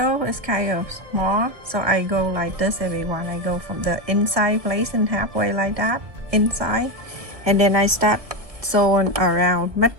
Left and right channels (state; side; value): late; left; 1.7 ms